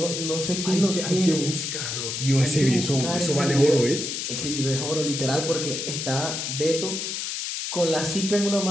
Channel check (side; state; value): left; noise; hiss, 4 dB below the sound